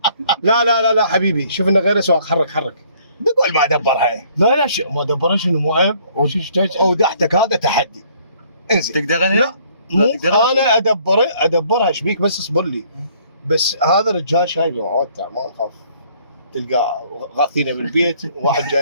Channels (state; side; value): inverted; both; correlation -0.61